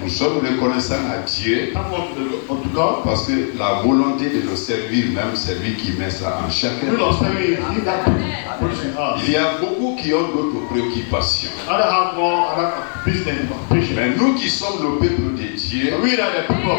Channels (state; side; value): silent; right; digital silence